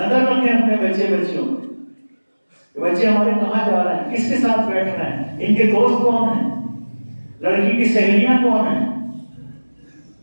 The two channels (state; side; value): inverted; both; correlation -1.00